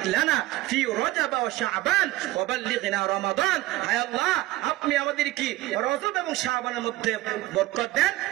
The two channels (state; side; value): quieter; left; 17.3 dB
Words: লানা ফি রজব ওয়া শাবান ওয়া বাল্লিগনা রমাদান। হে আল্লাহ, আপনি আমাদের কি রজব এবং শাবানের মধ্যে বরকত দেন,